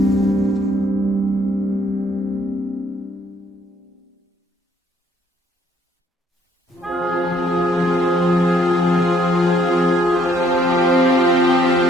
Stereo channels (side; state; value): both; normal; correlation 0.66